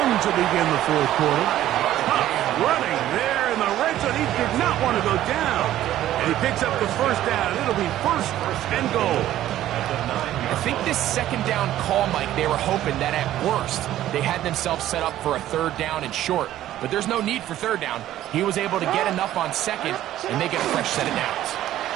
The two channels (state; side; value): quieter; left; 13.2 dB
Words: to begin the 4th quarter. Running there in the red zone. He did not want to go down. And he picks up the first down. It'll be 1st and goal. I think this 2nd down call, Mike, they were hoping that at worst they had themselves set up for a 3rd down and short. But there's no need for 3rd down. He was able to get enough on 2nd, and they get a fresh set of downs.